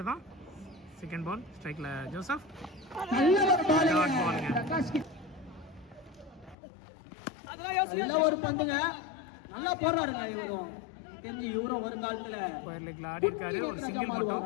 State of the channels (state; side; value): drops out; right; at 6.6 s